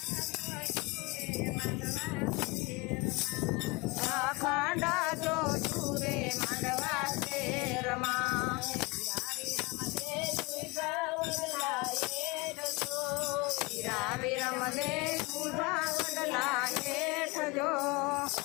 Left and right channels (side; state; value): right; quieter; 25.1 dB